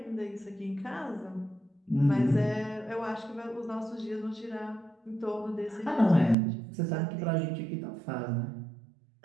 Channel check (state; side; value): drops out; left; at 6.4 s